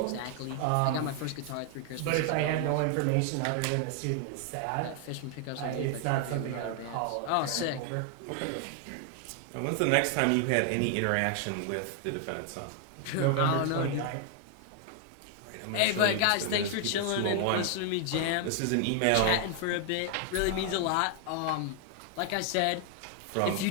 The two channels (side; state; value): both; different; correlation 0.00